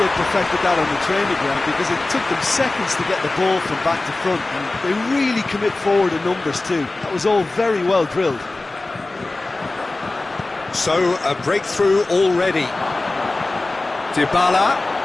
perfected that on the training ground because it took them seconds to get the ball from back to front, and they really commit forward in numbers too. That was all very well drilled. So, a breakthrough already. Dybala.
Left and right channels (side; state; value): right; quieter; 3.1 dB